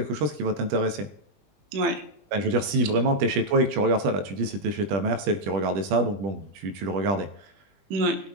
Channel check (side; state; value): left; late; 20 ms